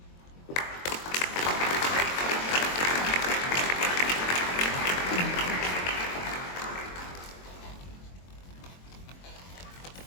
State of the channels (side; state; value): right; late; 22 ms